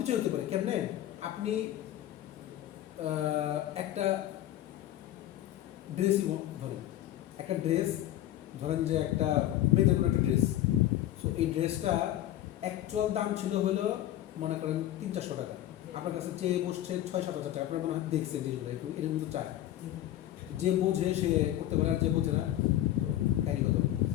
হতে পারে। কেমনে আপনি একটা ড্রেসই ধরেন, একটা ড্রেস ধরেন যে একটা মেয়েদের কোনো একটা ড্রেস, সো এই ড্রেসটা অ্যাকচুয়াল দাম ছিল হলো মনে করেন 300-400 টাকা, আপনার কাছে চেয়ে বসছে 6-7 হাজার টাকা, আপনার মনে হয় দেখছেন জিনিসগুলো এরকম কিন্তু চায়, যে বোঝে সে করতে পারে আর যে বোঝে না কাহিনি কত।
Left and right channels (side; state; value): right; quieter; 13.3 dB